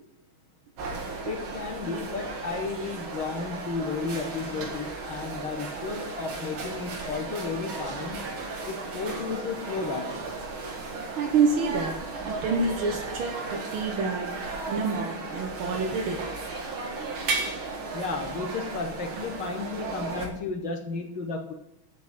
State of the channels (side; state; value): left; late; 6.3 ms